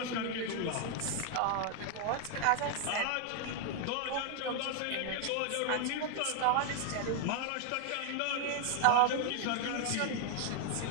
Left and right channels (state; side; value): different; both; correlation 0.00